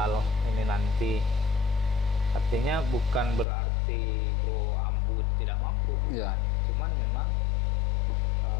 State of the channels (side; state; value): right; drops out; at 3.5 s